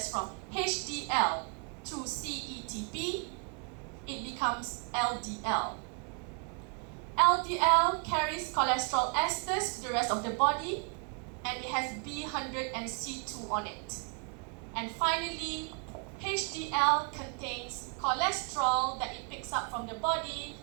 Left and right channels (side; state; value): left; quieter; 36.9 dB